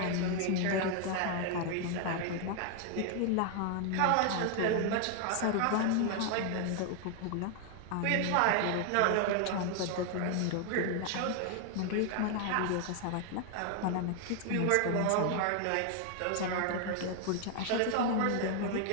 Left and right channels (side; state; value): both; different; correlation 0.00